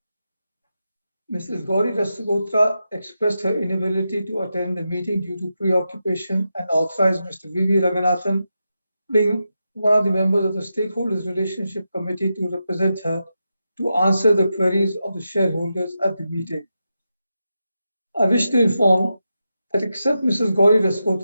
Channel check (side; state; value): both; inverted; correlation -0.88